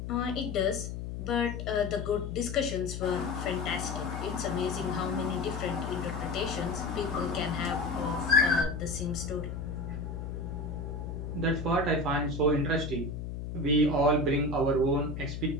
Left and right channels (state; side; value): noise; left; hum, 6 dB below the sound